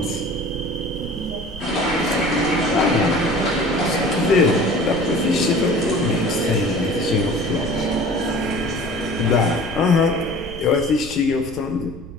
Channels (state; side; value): noise; right; rumble, 14 dB below the sound